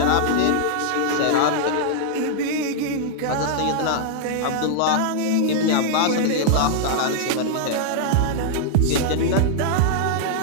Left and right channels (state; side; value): different; both; correlation -0.01